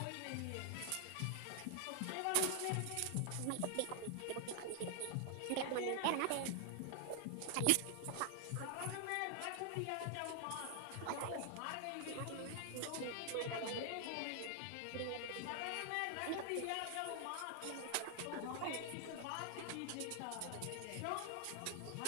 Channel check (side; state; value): both; different; correlation 0.00